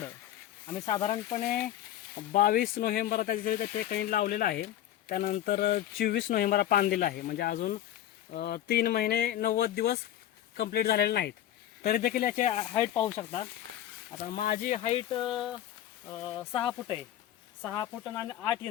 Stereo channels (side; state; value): right; quieter; 12.1 dB